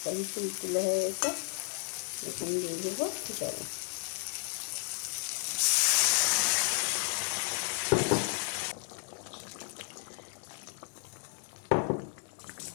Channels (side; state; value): right; silent; 56 dB below the other